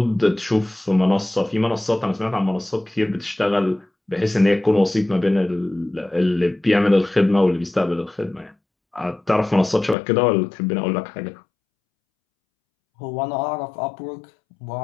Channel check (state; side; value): drops out; right; at 10.0 s